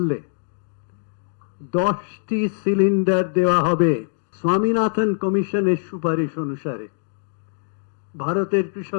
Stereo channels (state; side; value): silent; right; 64 dB below the other